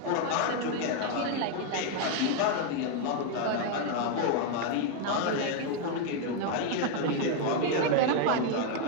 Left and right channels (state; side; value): different; both; correlation 0.01